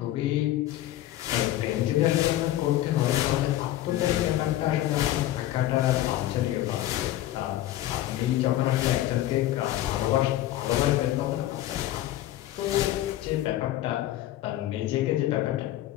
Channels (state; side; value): quieter; right; 14.1 dB